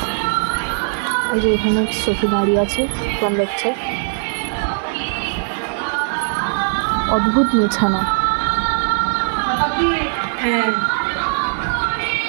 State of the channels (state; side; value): silent; left; digital silence